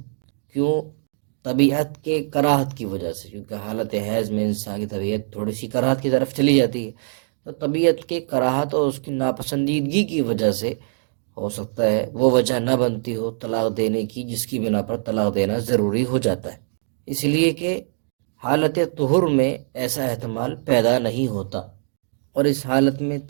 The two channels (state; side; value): silent; left; digital silence